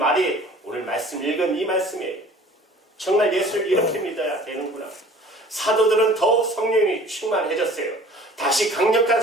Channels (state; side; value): normal; both; correlation 0.49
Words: 오늘 말씀 읽은 이 말씀이에요. 정말 예수를 이렇게 믿어야 되는구나. 사도들은 더욱 성령이 충만해졌어요. 다시 강력한